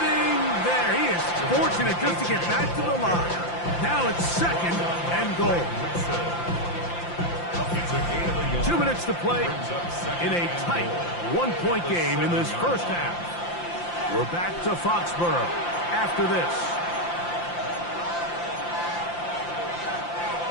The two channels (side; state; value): right; late; 5.8 ms